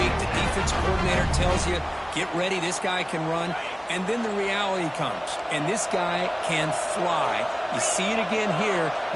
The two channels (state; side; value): identical; both; correlation 1.00